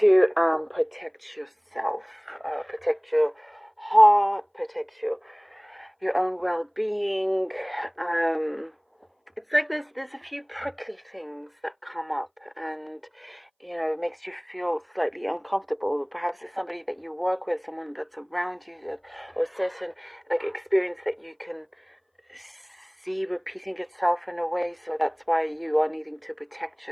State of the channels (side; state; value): both; identical; correlation 1.00